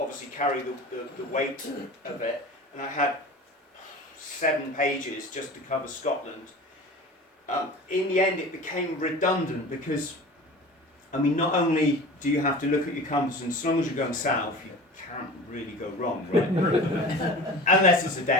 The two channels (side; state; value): both; normal; correlation 0.36